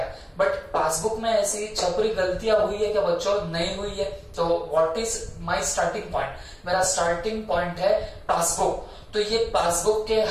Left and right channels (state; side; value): identical; both; correlation 1.00